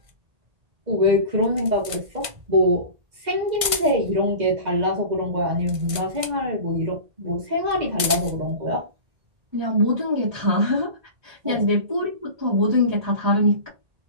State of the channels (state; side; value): late; left; 1.5 ms